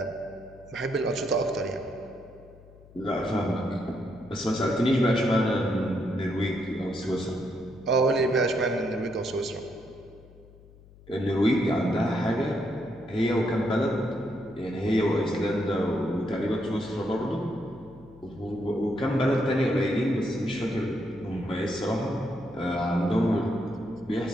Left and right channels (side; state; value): left; noise; hum, 23 dB below the sound